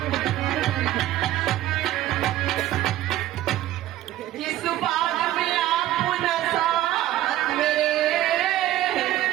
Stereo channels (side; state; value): left; quieter; 14.1 dB